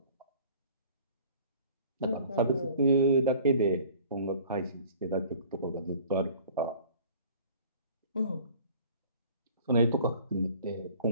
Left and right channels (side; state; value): both; inverted; correlation -0.49